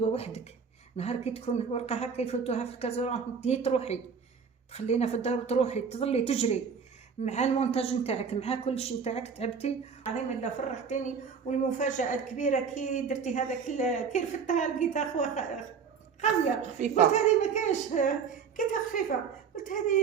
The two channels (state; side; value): quieter; left; 6.2 dB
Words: وحدك. نهار كي تكون الورقه هكا يفوتوها في الكازورون تروحي تخلينا في الدار وتروحي تظلي تجري مع المونتاج نتاعك مع كل شيء نتاعك. تعبتي عظيم الله، فرحتيني. والمفاجاه الكبيره كي درتي هذاك كي رفدتها لقيتها خاويه خفيفه. قلت هذه ما كاش، كيتها خفيفه. قلت